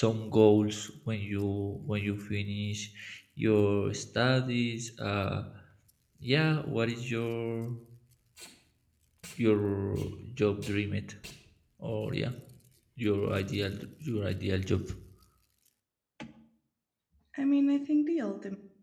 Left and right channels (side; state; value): both; identical; correlation 1.00